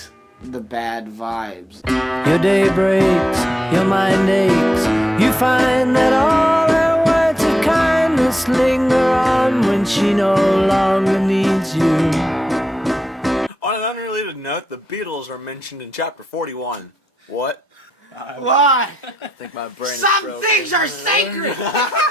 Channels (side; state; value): both; normal; correlation 0.82